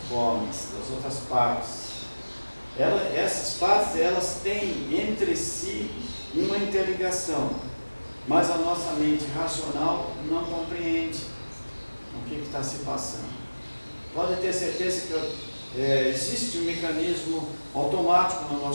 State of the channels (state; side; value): inverted; both; correlation -1.00